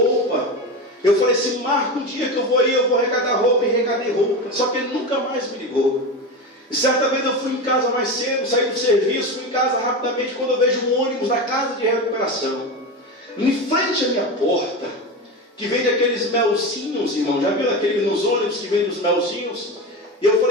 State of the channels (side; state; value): both; normal; correlation 0.22